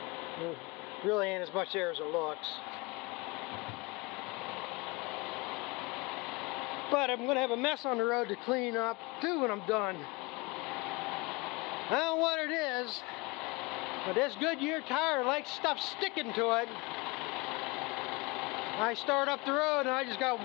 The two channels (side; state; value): right; quieter; 25.8 dB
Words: There really ain't as much there as it looks. But I'm going to have a mess on the road to clean up too when I'm done. I don't know what it is, but this Goodyear tire likes stuff sticking to it. I start up the road and I just got